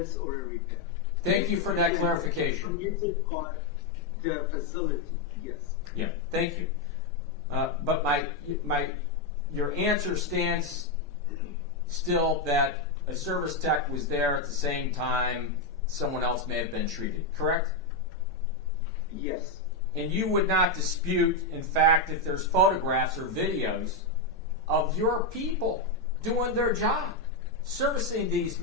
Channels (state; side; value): quieter; right; 3.1 dB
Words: or a repair. thank you for that clarification. Permitted by the facility, yes. Yeah, thank you. But your answer stands still that a service tech was there at the same time someone else may have been treated, correct? Yes. And you would not dispute, in fact, if there's photographs or videos of your people doing their job, servicing these